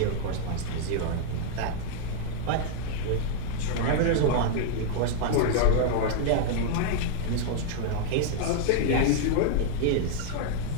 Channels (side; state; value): both; different; correlation -0.01